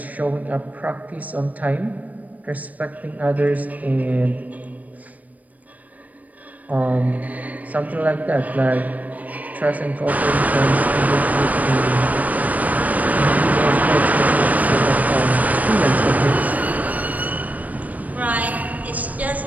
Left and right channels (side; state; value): left; late; 0.075 ms